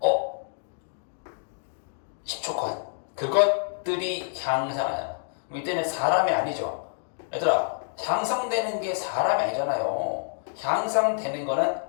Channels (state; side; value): silent; right; digital silence